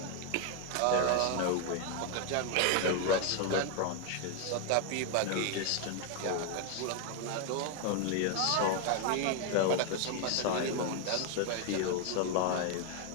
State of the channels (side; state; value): both; different; correlation 0.01